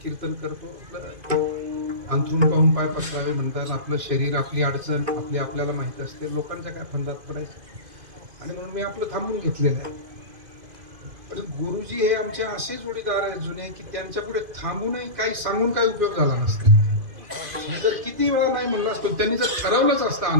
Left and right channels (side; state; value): left; late; 2.5 ms